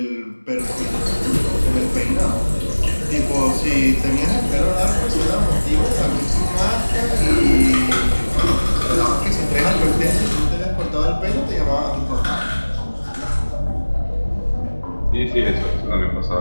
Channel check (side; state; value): both; inverted; correlation -1.00